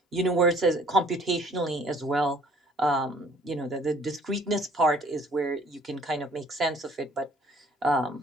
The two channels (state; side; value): normal; both; correlation 0.56